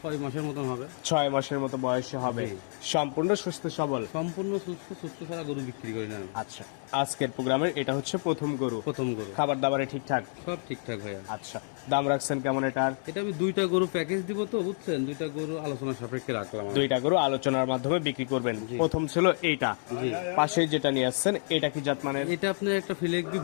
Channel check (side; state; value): right; silent; 58 dB below the other